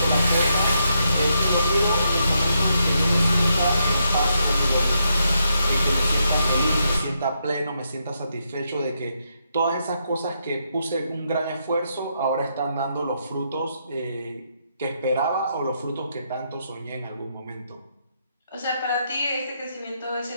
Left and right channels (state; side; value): inverted; both; correlation -0.80